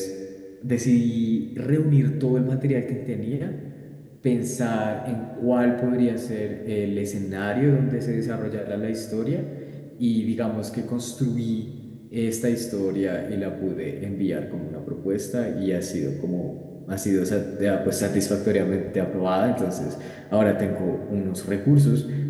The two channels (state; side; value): identical; both; correlation 1.00